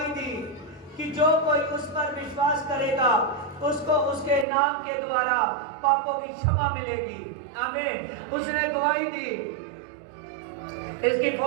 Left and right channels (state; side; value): drops out; left; at 4.5 s